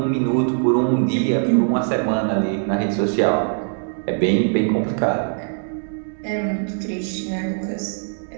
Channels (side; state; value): left; silent; 65 dB below the other